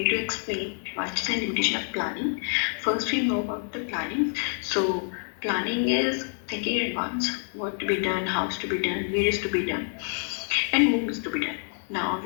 to explain advantages and limitation of planning. First, we know about the planning. So, planning is thinking in advance what to be done, how to be done, where is to be done, and whom is to be done. Now,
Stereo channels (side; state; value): right; silent; 56 dB below the other